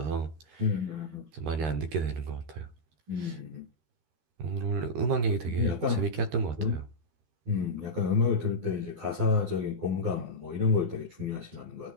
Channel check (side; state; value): left; late; 13 ms